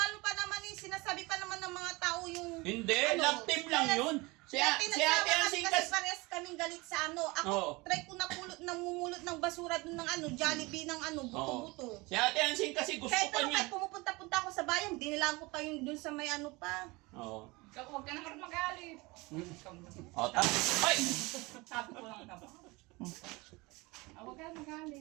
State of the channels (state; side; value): quieter; left; 24.0 dB